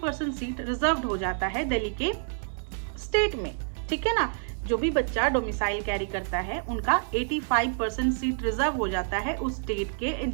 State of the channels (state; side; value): silent; left; 59 dB below the other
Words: सीट रिजर्व्ड हो जाता है दिल्ली के स्टेट में. ठीक है ना, जो भी बच्चा डोमिसाइल कैरी करता है उनका 85% सीट रिजर्व हो जाता है उस स्टेट के